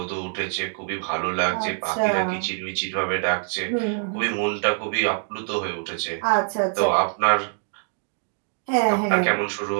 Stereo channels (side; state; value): left; silent; digital silence